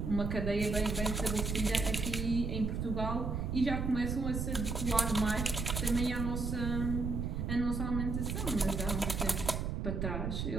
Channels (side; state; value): right; noise; rumble, 2 dB below the sound